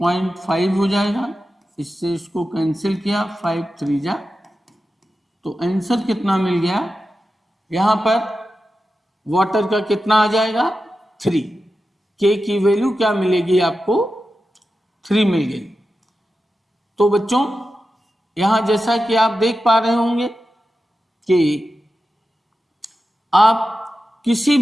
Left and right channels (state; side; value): normal; both; correlation 0.92